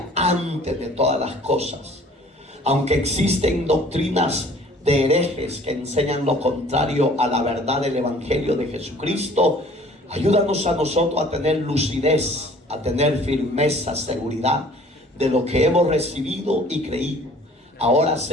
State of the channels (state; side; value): normal; both; correlation 0.52